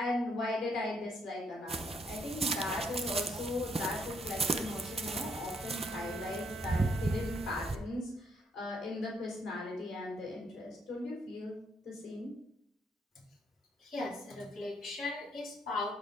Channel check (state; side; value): normal; both; correlation 0.72